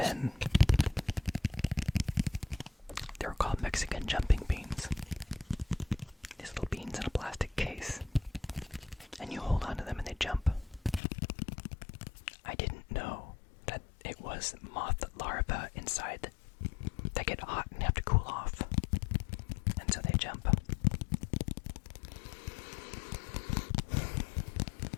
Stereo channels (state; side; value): drops out; right; at 11.0 s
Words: they were called Mexican jumping beans. These little beans in a plastic case. And you hold onto them and they jump. I didn't know that it was moth larvae inside that get hot and have to cool off. And so they jump.